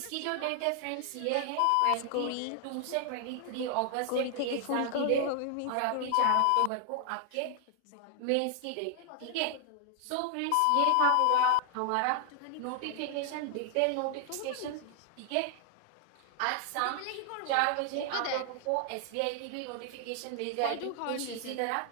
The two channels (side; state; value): both; different; correlation 0.00